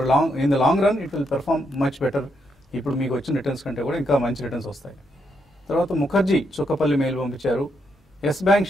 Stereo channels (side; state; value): both; normal; correlation 0.79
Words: in the long run it will perform much better. ఇప్పుడు మీకు వచ్చిన రిటర్న్స్ కంటే కూడా ఇంకా మంచి రిటర్న్స్ వస్తాయి. తర్వాత ముఖర్జీ చుక్కపల్లి మెయిల్ పంపించారు. ఎస్ బ్యాంక్